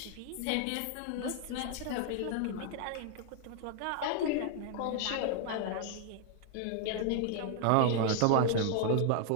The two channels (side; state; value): both; different; correlation 0.00